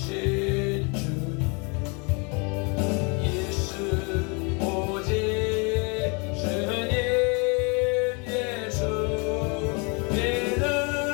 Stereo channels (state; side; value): quieter; right; 32.3 dB